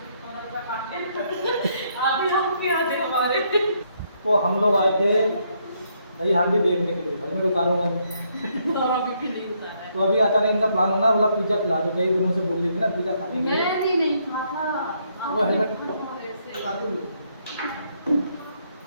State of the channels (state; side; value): inverted; both; correlation -0.73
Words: तो हम लोग आए थे दही हांडी देखने के लिए, हेलमेट उतारूंगा तो अभी अचानक इनका प्लान होना, बोला पिज्जा खिला दो। कई दिनों से बोल रही थी ना पिज्जा खाने के लिए। मैं भी नहीं खाता। वो हेलमेट